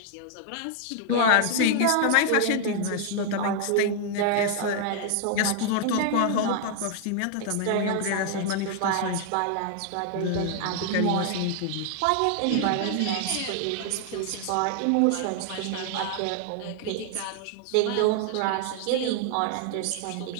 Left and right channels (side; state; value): both; different; correlation 0.00